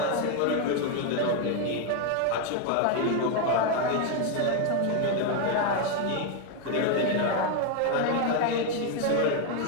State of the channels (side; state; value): both; different; correlation 0.01